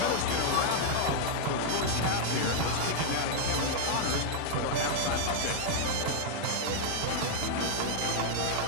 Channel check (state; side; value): different; both; correlation 0.00